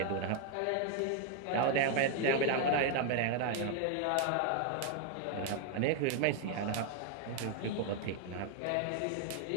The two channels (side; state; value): both; different; correlation 0.01